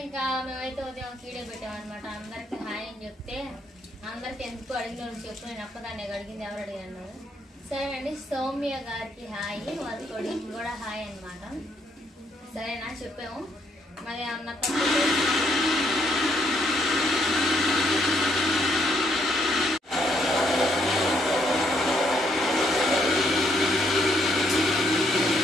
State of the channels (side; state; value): both; normal; correlation 0.72